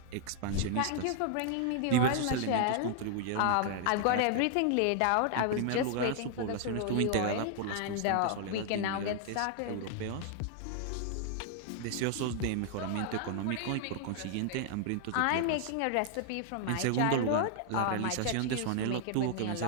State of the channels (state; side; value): different; both; correlation -0.01